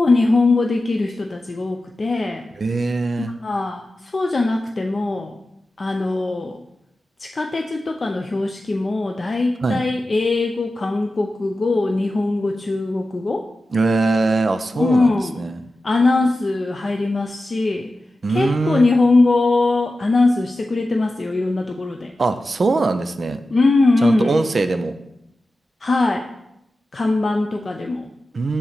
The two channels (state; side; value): normal; both; correlation 0.93